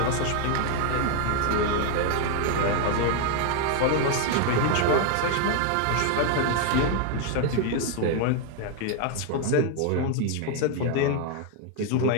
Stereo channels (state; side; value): different; both; correlation 0.01